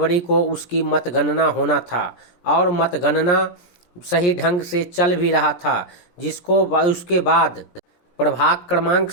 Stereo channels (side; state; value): right; late; 17 ms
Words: को उसकी मतगणना होना था और मतगणना सही ढंग से चल भी रहा था, जिसको उसके बाद प्रभाग क्रमांक